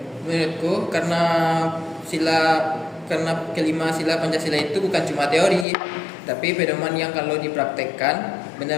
Menurutku karena kelima sila Pancasila itu bukan cuma teori, tapi pedoman yang kalau dipraktekkan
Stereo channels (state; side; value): drops out; right; at 5.7 s